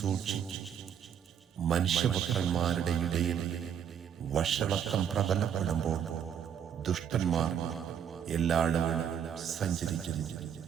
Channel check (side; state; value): left; quieter; 8.5 dB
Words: മനുഷ്യപുത്രന്മാരുടെ ഇടയിൽ വഷളത്വം പ്രബലപ്പെടുമ്പോൾ ദുഷ്ടന്മാർ എല്ലായിടവും സഞ്ചരിക്കുന്നു.